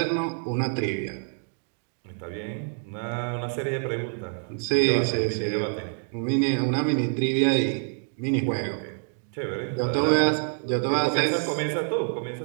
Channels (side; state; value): left; silent; 60 dB below the other